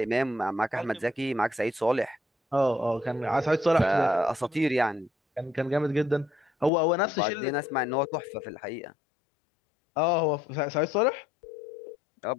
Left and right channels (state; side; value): drops out; right; at 6.7 s